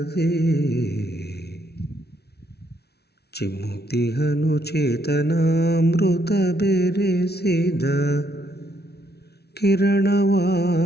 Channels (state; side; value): late; right; 0.48 ms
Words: ಚಿಮ್ಮುತಿಹನು ಚೇತನಾಮೃತ ಬೆರೆಸಿದ ಕಿರಣವ